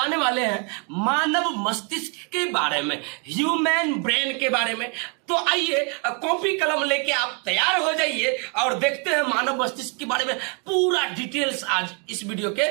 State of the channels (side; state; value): left; quieter; 35.7 dB